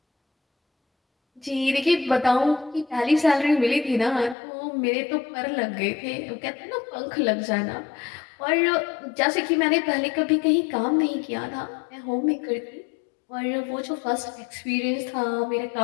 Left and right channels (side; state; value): right; drops out; at 4.4 s